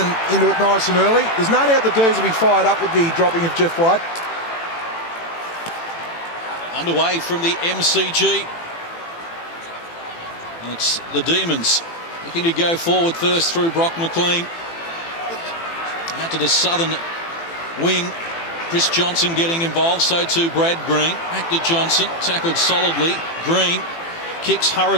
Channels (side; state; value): right; late; 18 ms